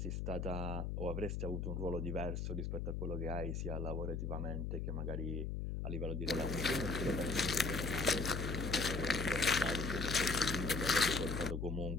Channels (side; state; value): left; noise; hum, 2 dB below the sound